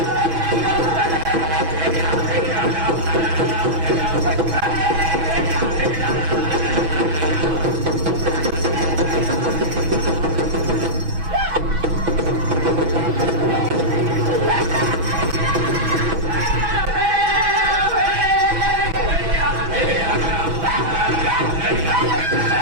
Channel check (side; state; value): left; late; 6.1 ms